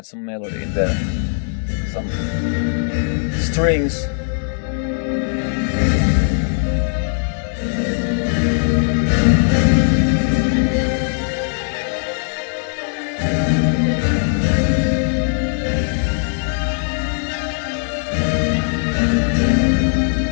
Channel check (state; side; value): silent; right; digital silence